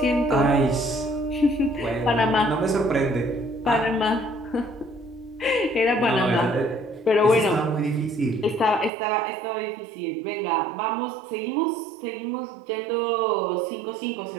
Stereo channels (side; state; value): left; drops out; at 8.9 s